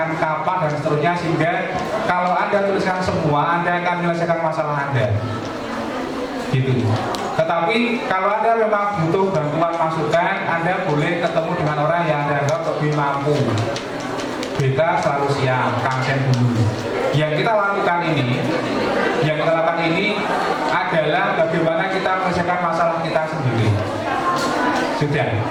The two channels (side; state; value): both; identical; correlation 1.00